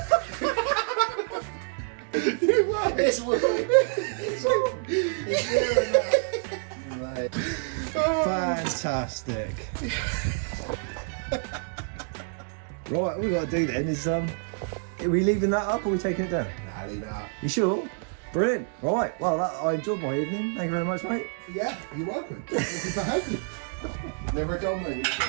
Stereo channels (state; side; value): silent; left; 60 dB below the other